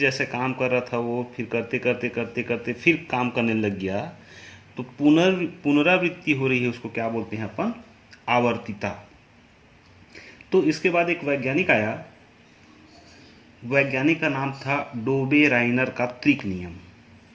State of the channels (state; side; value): identical; both; correlation 1.00